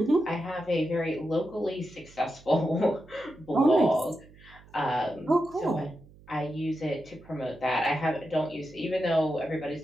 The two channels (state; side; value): noise; right; hum, 24 dB below the sound